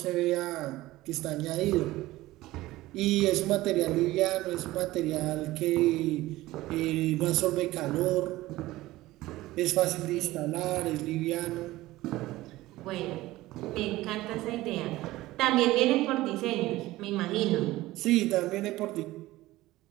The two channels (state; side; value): quieter; left; 17.6 dB